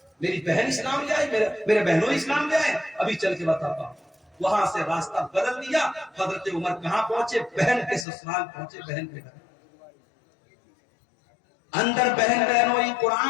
میری بہن اسلام لے آئی، میرے بہنوئی اسلام لے آئے، ابھی چل کے بتاتا ہوں۔ وہاں سے راستہ بدل دیا، حضرت عمر کہاں پہنچے؟ بہن کے سسرال پہنچے، بہن کے گھر۔ اندر بہن بہنوئی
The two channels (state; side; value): drops out; right; at 8.1 s